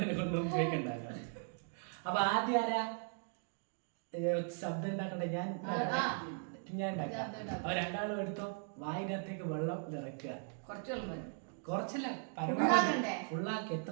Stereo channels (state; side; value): silent; left; 52 dB below the other